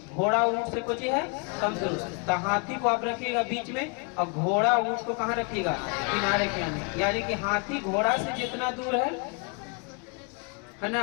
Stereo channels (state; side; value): quieter; right; 33.7 dB